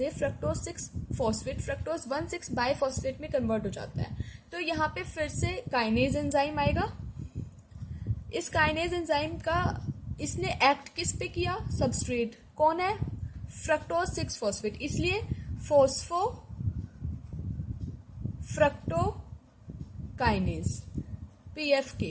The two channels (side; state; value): both; identical; correlation 1.00